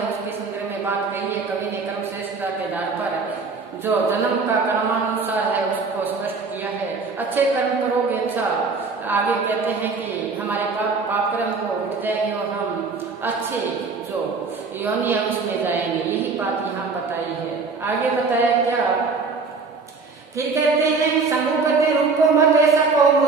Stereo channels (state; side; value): quieter; left; 4.4 dB